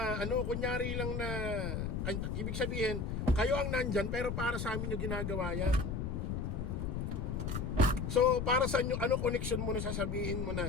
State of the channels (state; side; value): noise; left; rumble, 2 dB below the sound